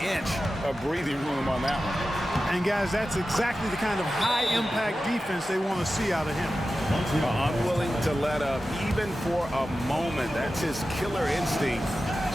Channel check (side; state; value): both; normal; correlation 0.93